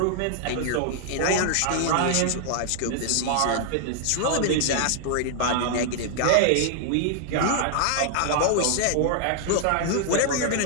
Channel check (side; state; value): both; different; correlation -0.01